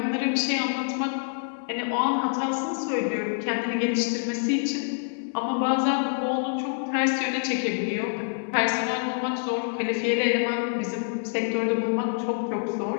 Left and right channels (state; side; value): silent; right; digital silence